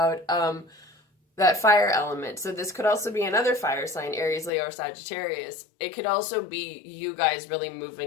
that fire element. So this could also be another fire sign, Aries, Leo, or Sagittarius. It could also be you guys really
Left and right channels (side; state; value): right; drops out; at 4.5 s